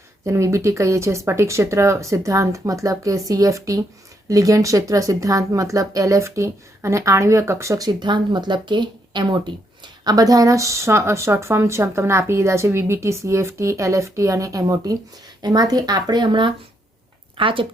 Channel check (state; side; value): normal; both; correlation 0.76